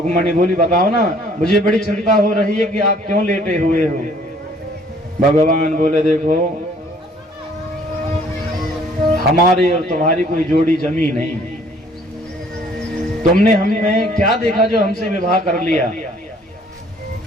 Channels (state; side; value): normal; both; correlation 0.58